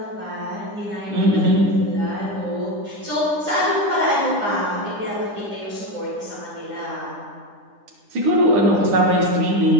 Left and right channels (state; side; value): late; left; 9.8 ms